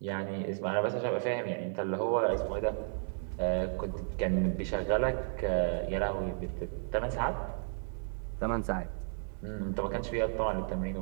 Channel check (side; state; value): left; silent; 55 dB below the other